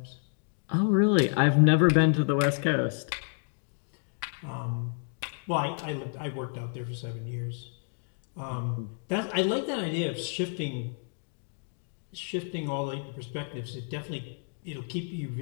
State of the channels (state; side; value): silent; right; 58 dB below the other